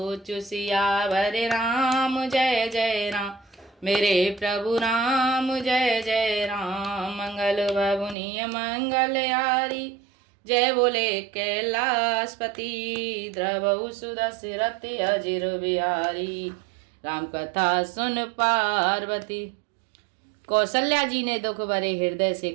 सियावर राम। जय जय राम मेरे प्रभु राम, जय जय राम। मंगल भवनीय मंगल यारी, जय बोले कैलाशपति। द्रवहु सुदशरथ अजिर बिहारी, राम कथा सुन पार्वती। कौशल्या जी ने दुख भरे हृदय से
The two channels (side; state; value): left; drops out; at 8.2 s